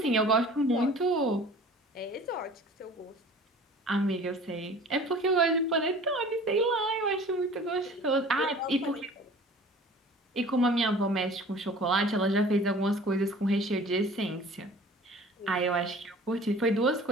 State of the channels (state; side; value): normal; both; correlation 0.46